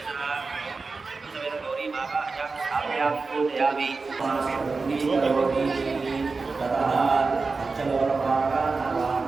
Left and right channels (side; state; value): left; quieter; 4.2 dB